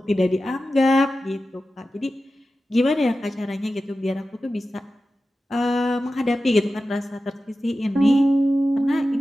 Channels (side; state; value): both; normal; correlation 0.93